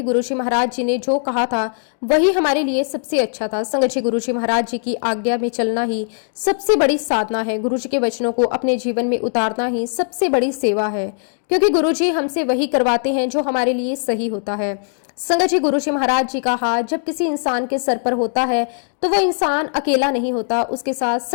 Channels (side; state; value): right; silent; digital silence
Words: गुरुजी महाराज जी ने जो कहा था वही हमारे लिए सबसे अच्छा था। संगत जी, गुरुजी महाराज जी की आज्ञा में चलना ही सबसे बड़ी साधना है। गुरुजी के वचनों को अपने जीवन में उतारना ही सबसे बड़ी सेवा है, क्योंकि गुरुजी हमसे वही करवाते हैं जो हमारे लिए सही होता है। संगत जी, गुरुजी महाराज जी का हाथ जब किसी इंसान के सर पर होता है तो वो इंसान अकेला नहीं होता, उसके साथ